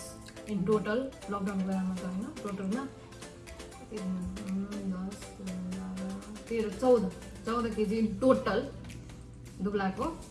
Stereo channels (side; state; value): both; identical; correlation 1.00